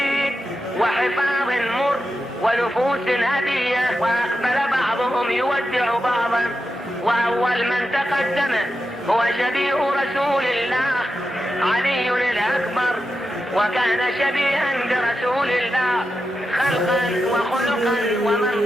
وحفاظ مر ونفوس هدية، وأقبل بعضهم يودع بعضا، وأول من تقدم هو شبيه رسول الله علي الأكبر، وكان شبيها برسول الله خلقا وخلقا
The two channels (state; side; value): normal; both; correlation 0.89